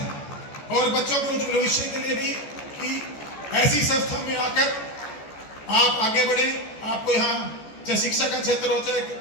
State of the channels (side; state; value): right; late; 14 ms